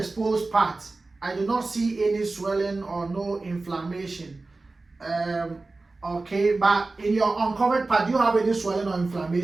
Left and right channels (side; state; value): left; quieter; 3.4 dB